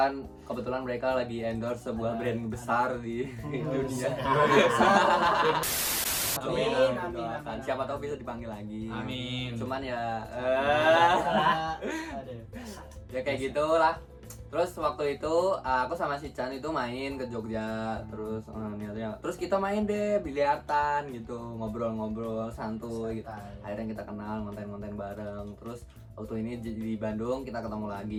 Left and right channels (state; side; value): identical; both; correlation 1.00